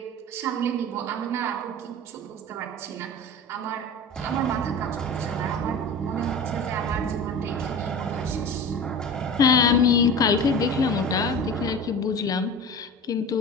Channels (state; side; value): normal; both; correlation 0.33